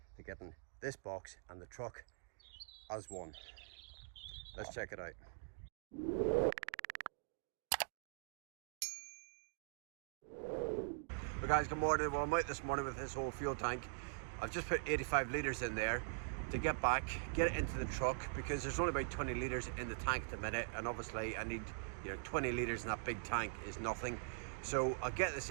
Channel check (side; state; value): left; silent; digital silence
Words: to getting this box and the truck as one. Let's check it out. Well, guys, good morning. Well, I'm out this morning with this whole fuel tank. I've just put 85 litres in there to get back, get it into the truck, because there's only about 20 litres in the tank at the minute, and obviously I need, 20 litres in that big tank is nothing. So I'll get this